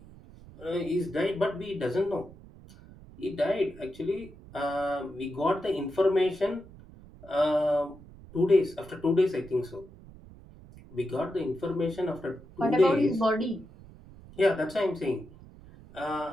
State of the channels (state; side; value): noise; right; rumble, 20 dB below the sound